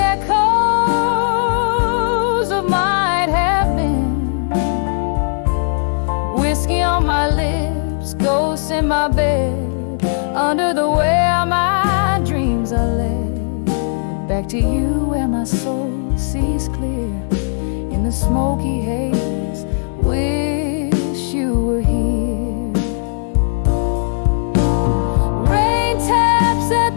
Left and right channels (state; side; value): silent; right; digital silence